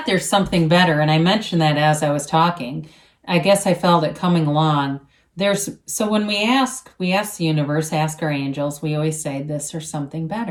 there's something better, and I mentioned that as I was talking. I guess I felt it coming along. So when we ask the universe, ask our angels, we always say this or something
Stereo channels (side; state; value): both; identical; correlation 1.00